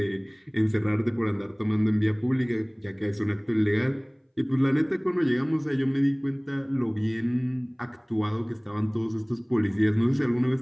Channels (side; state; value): both; identical; correlation 1.00